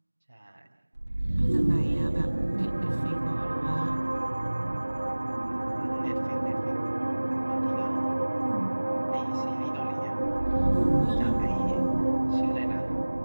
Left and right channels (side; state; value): both; inverted; correlation -1.00